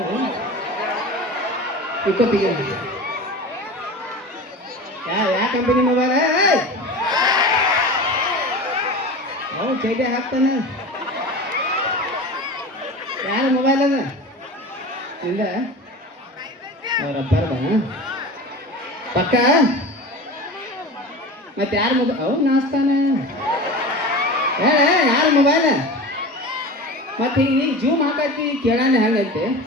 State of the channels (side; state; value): both; normal; correlation 0.32